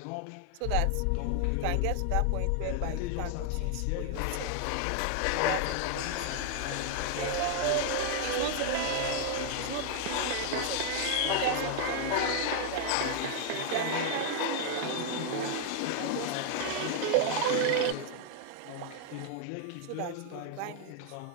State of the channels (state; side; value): different; both; correlation 0.00